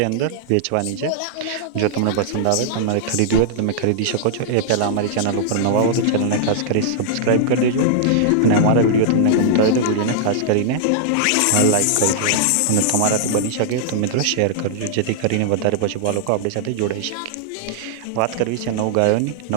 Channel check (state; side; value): different; both; correlation -0.01